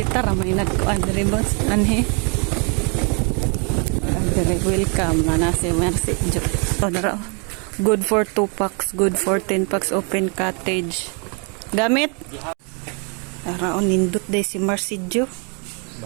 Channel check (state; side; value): quieter; left; 36.4 dB